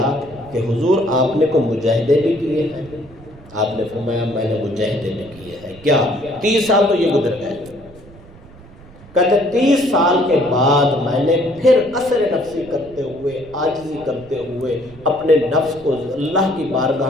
کہ حضور آپ نے کو مجاہدے بھی کیے ہیں؟ آپ نے فرمایا میں نے مجاہدے بھی کیے ہیں۔ کیا 30 سال تو یہ گزر گئے؟ کہتے 30 سال کے بعد میں نے پھر قصر نفسی کرتے ہوئے، عاجزی کرتے ہوئے، اپنے نفس کو اللہ کی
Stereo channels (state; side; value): noise; right; rumble, 21 dB below the sound